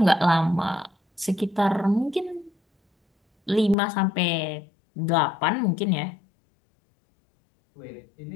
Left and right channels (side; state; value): right; drops out; at 3.8 s